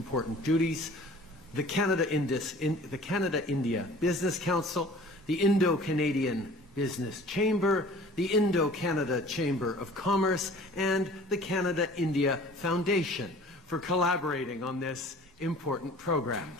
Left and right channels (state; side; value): normal; both; correlation 0.47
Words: duties. The Canada-India Business Council, the Indo-Canadian Business Chamber, the Indo-Canada Chamber of Commerce, and the Canada-India Foundation for collaborating on this important program.